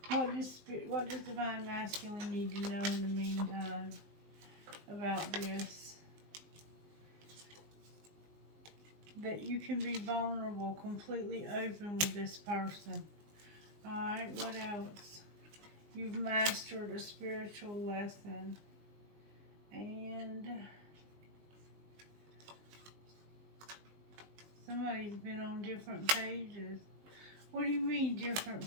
What does Divine Masculine need to know in the meantime about this? That you can be vulnerable, completely open with this person. Alright, what else? You've mastered a spiritual lesson. And somebody's been on different pages. What do you mean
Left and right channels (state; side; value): late; left; 19 ms